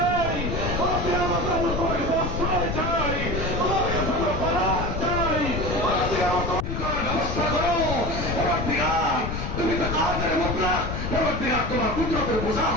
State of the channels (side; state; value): left; noise; rumble, 4 dB below the sound